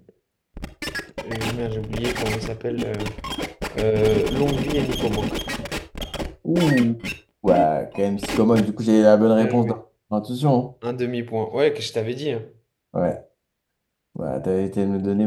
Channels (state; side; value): identical; both; correlation 1.00